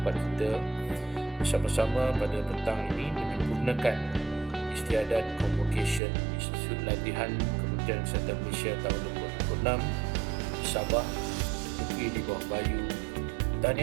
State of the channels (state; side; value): drops out; left; at 6.0 s